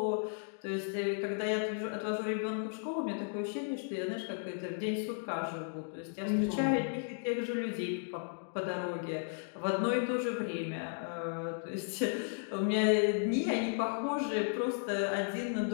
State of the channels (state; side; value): silent; right; digital silence